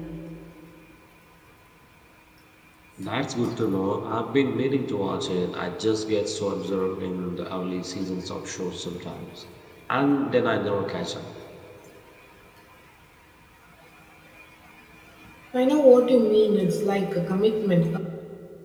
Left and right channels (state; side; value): identical; both; correlation 1.00